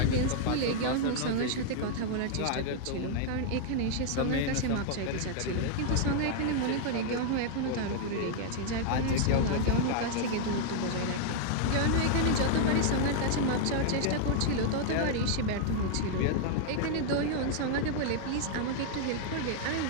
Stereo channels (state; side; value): different; both; correlation -0.01